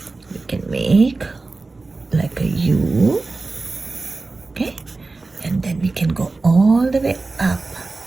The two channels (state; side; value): quieter; left; 3.6 dB